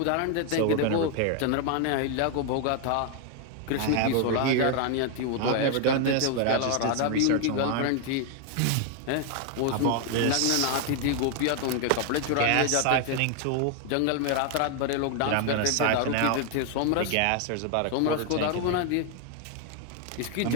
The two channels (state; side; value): different; both; correlation 0.00